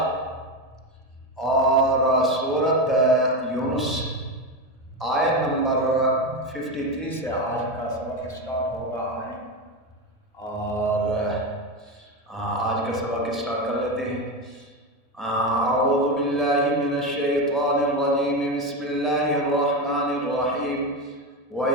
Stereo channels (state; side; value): normal; both; correlation 0.16